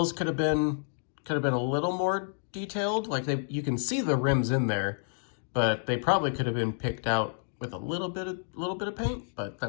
could have been a little more detailed. Like you can see the rims in there, but they probably could have been picked out with a little bit of paint, but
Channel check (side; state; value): right; silent; digital silence